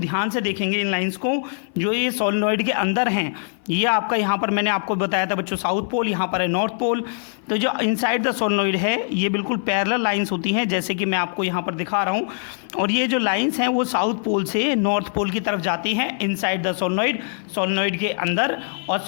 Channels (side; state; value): right; silent; 57 dB below the other